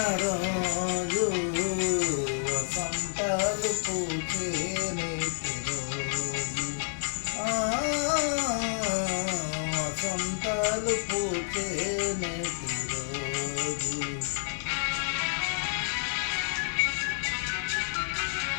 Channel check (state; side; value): silent; right; digital silence